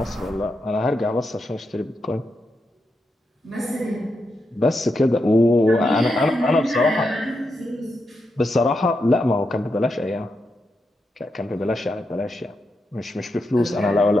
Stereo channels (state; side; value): normal; both; correlation 0.85